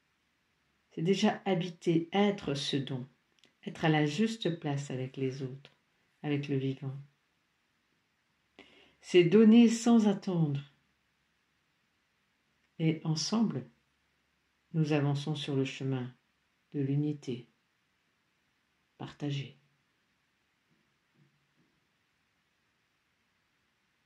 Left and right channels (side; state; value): both; identical; correlation 1.00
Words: c'est déjà habiter, être ce don, être à la juste place avec les autres, avec le vivant. C'est donner sans attendre. Et ensemble, nous avançons sur le chemin de l'unité partagée.